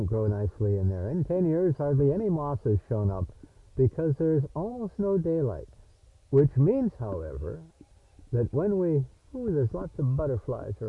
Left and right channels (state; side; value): identical; both; correlation 1.00